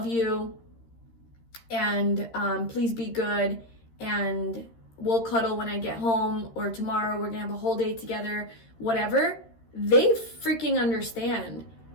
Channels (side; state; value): right; late; 13 ms